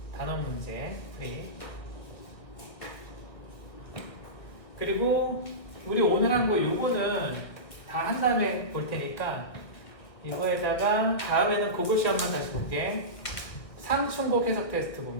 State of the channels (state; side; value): late; right; 1.7 ms